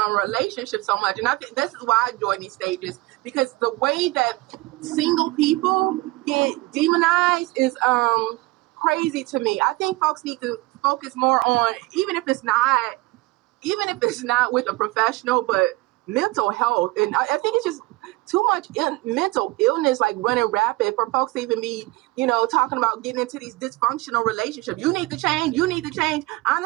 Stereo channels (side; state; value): left; quieter; 20.8 dB